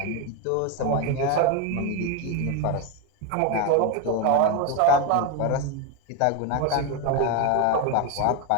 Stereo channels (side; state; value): both; different; correlation 0.02